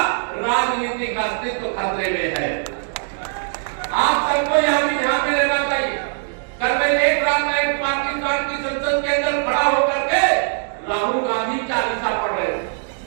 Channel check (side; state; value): left; silent; digital silence